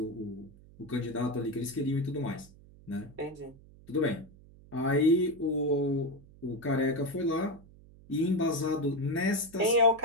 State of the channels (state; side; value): noise; right; hum, 23 dB below the sound